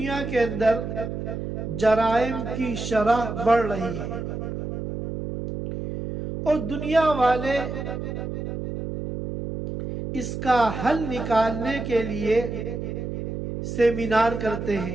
کے اندر جرائم کی شرح بڑھ رہی ہے، اور دنیا والے اس کا حل نکالنے کے لیے سیمینار کرتے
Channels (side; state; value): right; noise; hum, 5 dB below the sound